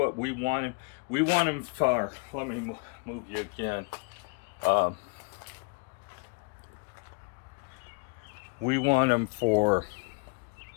we want them. We want them for, let me move you again. We want them for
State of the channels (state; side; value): quieter; right; 30.4 dB